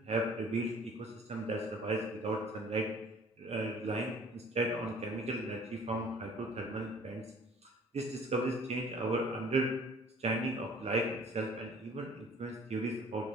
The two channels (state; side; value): normal; both; correlation 0.51